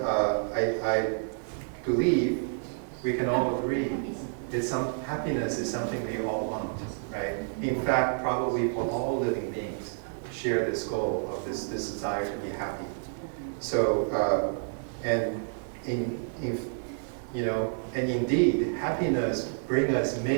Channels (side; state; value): left; silent; digital silence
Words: I believe we can all agree happiness is something we all want, right? In fact, probably for all living beings, share this goal of this desire to be happy. So, and indeed, happiness brings us